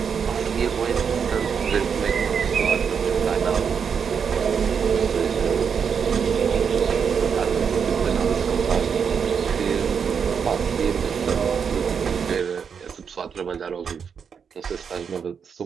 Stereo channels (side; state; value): left; quieter; 6.7 dB